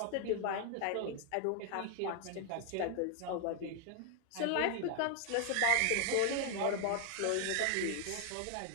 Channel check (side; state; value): both; different; correlation 0.00